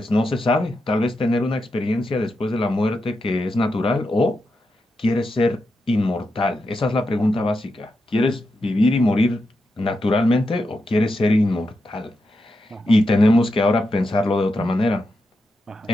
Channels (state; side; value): normal; both; correlation 0.87